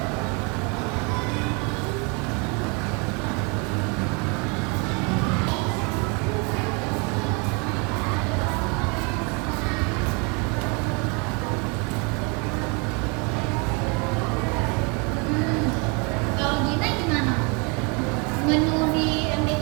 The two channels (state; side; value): quieter; left; 32.0 dB